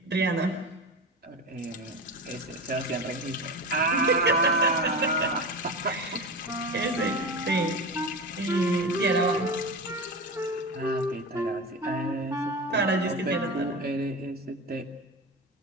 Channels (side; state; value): both; normal; correlation 0.26